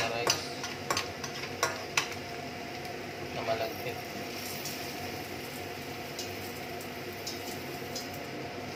rice na malagkit.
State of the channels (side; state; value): both; identical; correlation 1.00